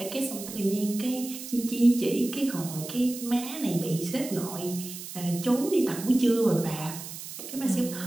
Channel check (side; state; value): right; noise; hiss, 11 dB below the sound